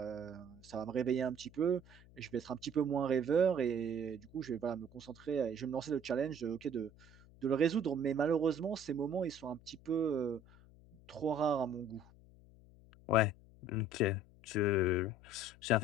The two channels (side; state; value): left; noise; hum, 23 dB below the sound